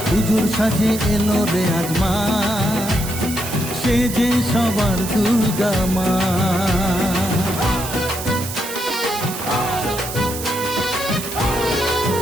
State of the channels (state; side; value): noise; right; hiss, 8 dB below the sound